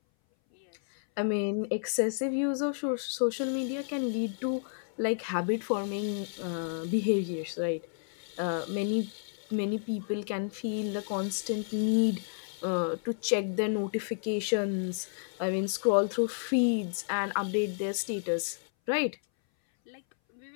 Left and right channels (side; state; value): right; silent; 57 dB below the other